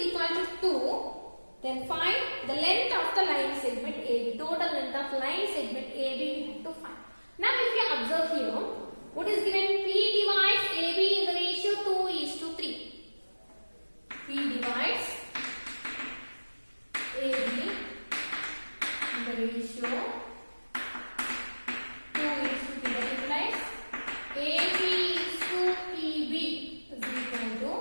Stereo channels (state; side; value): inverted; both; correlation -1.00